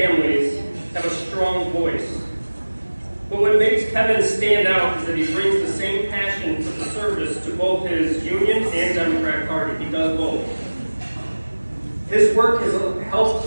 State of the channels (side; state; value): both; inverted; correlation -1.00